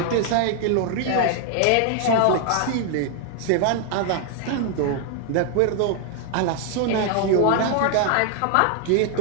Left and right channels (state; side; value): different; both; correlation 0.00